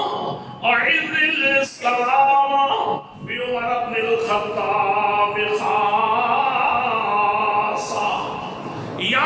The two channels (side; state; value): both; identical; correlation 1.00